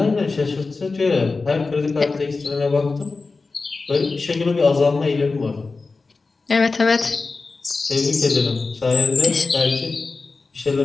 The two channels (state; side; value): quieter; right; 4.0 dB